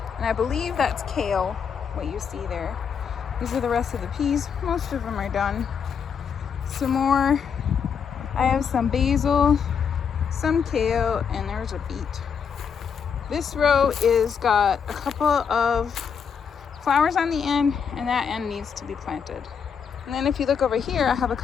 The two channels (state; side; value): quieter; right; 6.9 dB